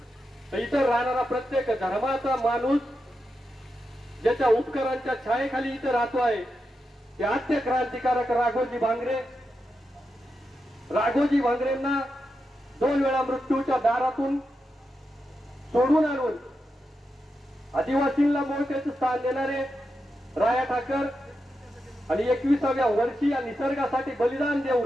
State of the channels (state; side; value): normal; both; correlation 0.87